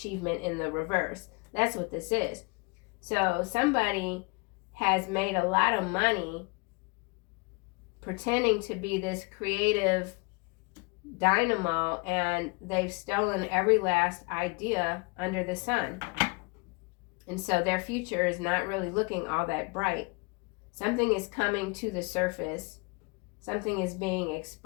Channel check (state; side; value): quieter; right; 30.4 dB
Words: in the reverse. That's what this is. So somebody has made a lot of money pretending to be this creative dynamo, and they've stolen every last idea under the sun. And so their future is not really looking all that bright. Something is coming to the surface. Something is being